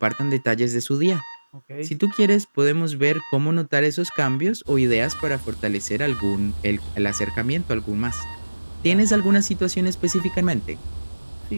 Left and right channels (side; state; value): both; inverted; correlation -1.00